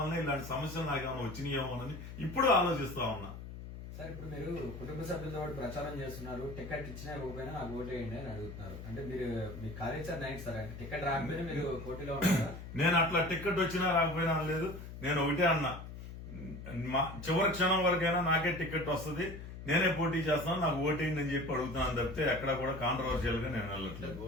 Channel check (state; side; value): noise; left; hum, 11 dB below the sound